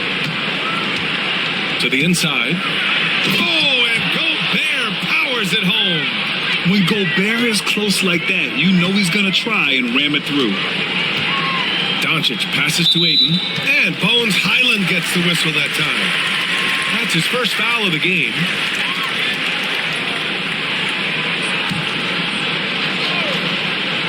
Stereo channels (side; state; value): both; identical; correlation 1.00